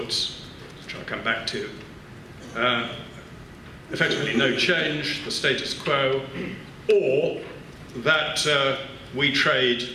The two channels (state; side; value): identical; both; correlation 1.00